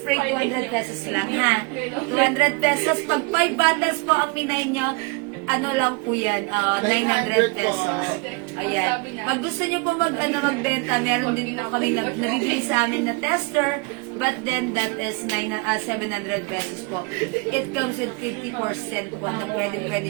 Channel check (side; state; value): left; quieter; 29.3 dB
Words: 200 pesos lang, ha? 200 pesos. Pag 5 bottles po ang minay nyo, ano lang po yan, 900 pesos. Ayan. Pag gusto nyo po magbenta, meron din po kami nabibili sa amin na tester, but then that is 700 pesos po. It comes with 50% po na pwede